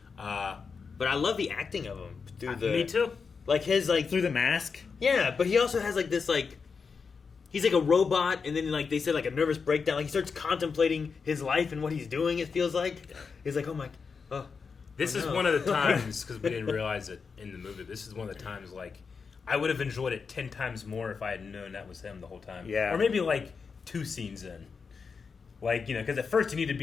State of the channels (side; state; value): right; quieter; 5.4 dB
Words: But I love the acting of him. Through the, me too. Like, his, like... Through the mask. Yeah, but he also has, like, this, like... He's like a robot, and then, like, they said, like, a nervous breakdown. Like, he starts contemplating his life and what he's doing, it feels like. He's like, oh, my... Oh. This is no. one of the times, because we didn't realize it in the movie, this is one of the times, like, I would have enjoyed it 10 times more if I had known that was him the whole time. Yeah. Or maybe, like, 2 scenes in. Like, you know, because at first you need to